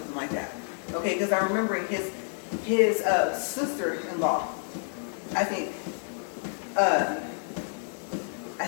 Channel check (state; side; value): silent; right; 59 dB below the other